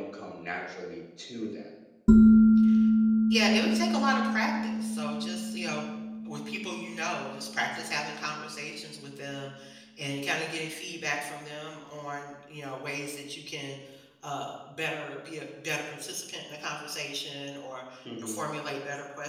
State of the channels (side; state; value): both; identical; correlation 1.00